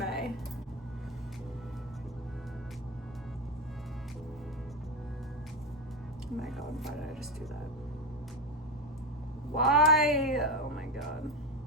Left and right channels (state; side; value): normal; both; correlation 0.16